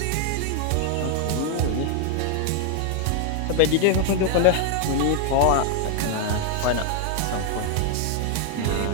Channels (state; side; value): different; both; correlation 0.00